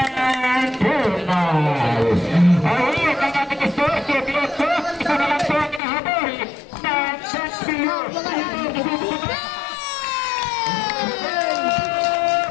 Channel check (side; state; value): right; drops out; at 5.8 s